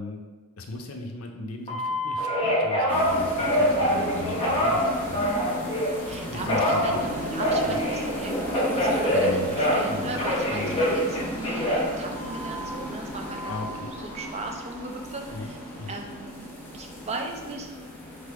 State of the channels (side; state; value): both; normal; correlation 0.09